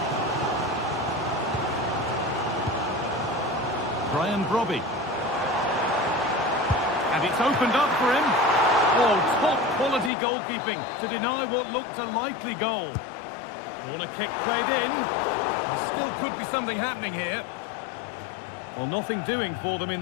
Brian Brobby. And it's opened up for him. Oh, top quality goalkeeping to deny what looked a likely goal. Corner kick played in. There still could be something happening here. Well, nothing doing for them in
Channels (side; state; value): right; drops out; at 10.1 s